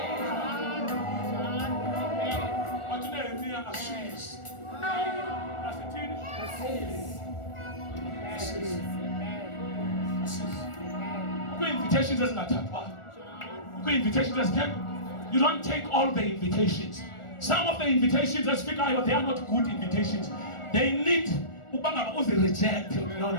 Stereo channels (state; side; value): late; right; 1.4 ms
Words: Wathi Nehemiya asisi asithini kwi-invitations ezingathathwayo. Kwi-invitations ezithethwa, you don't take all the invitations. Some of the invitations ezifikayo, they are not good invitations. They need ukuba ngaba uzi-reject. No,